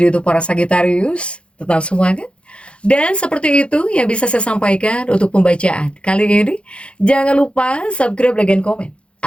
untuk para Sagittarius, tetap semangat. Dan seperti itu yang bisa saya sampaikan untuk pembacaan kali ini. Jangan lupa subscribe, like, dan komen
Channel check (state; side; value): late; right; 0.059 ms